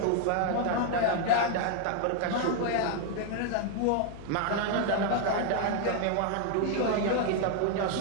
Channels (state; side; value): different; both; correlation 0.00